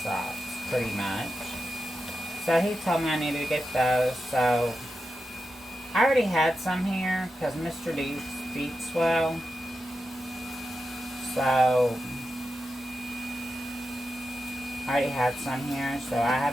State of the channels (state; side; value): normal; both; correlation 0.90